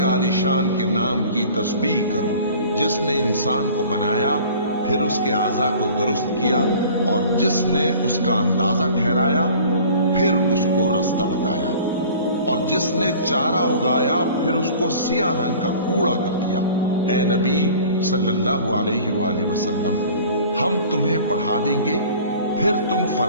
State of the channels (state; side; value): inverted; both; correlation -0.46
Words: आलिशान के नाम की तस्बीह करो, जिसने इंसान को बनाया, फिर उसके आज़ा को दुरुस्त किया, और जिसने उसका अंदाजा ठहराया, फिर उसको रास्ता बताया, और जिसने चारा उगाया, फिर उसको सियाह रंग का कूड़ा कर दिया। ए नबी सल्लल्लाहु अलैहि वसल्लम, हम तुम्हें पढ़ा देंगे, फिर तुम